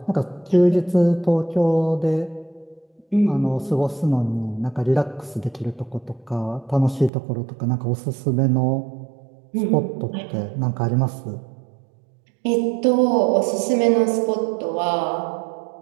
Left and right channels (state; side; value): drops out; left; at 7.1 s